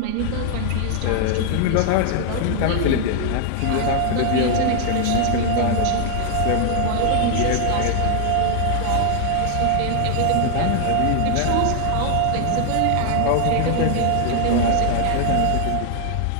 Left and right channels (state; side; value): different; both; correlation 0.00